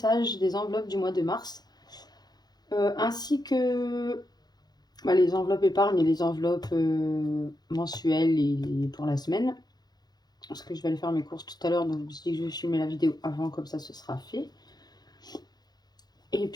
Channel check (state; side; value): late; right; 0.19 ms